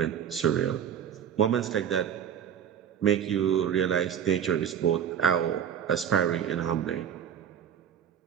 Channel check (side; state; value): left; quieter; 8.9 dB